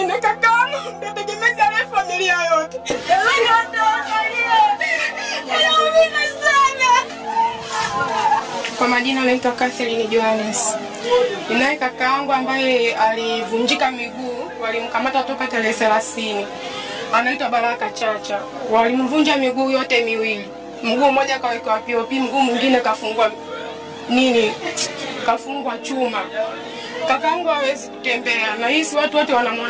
kakaangu ndio tegemezi ya familia yote. Kwa majina naitwa Catherine Johannes. Ninaye kakaangu ambaye alivunjika miguu, walimkamata toka tarehe 30. Anaitwa Baraka Chacha. Walimvunja miguu yote miwili. Mguu mmoja kawekwa POP, mguu mwingine kafungwa chuma. Kakaangu hawezi kutembea na hisi watu wote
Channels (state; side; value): identical; both; correlation 1.00